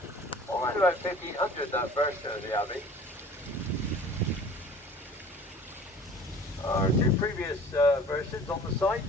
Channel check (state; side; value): normal; both; correlation 0.45